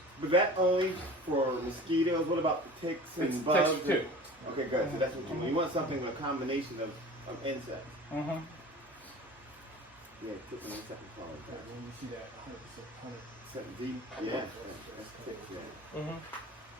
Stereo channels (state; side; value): normal; both; correlation 0.40